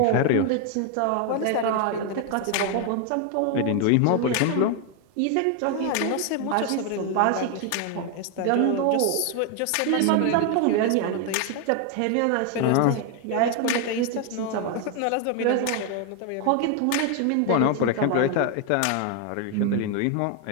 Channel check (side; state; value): both; different; correlation 0.01